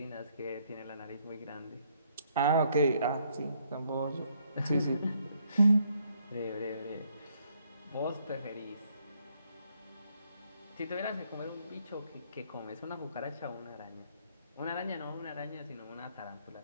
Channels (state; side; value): inverted; both; correlation -0.70